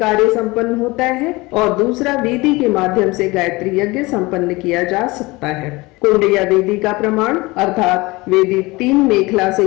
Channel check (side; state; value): right; quieter; 22.8 dB